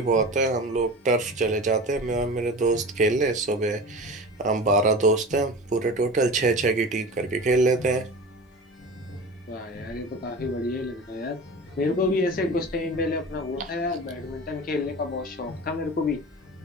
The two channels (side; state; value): both; normal; correlation 0.33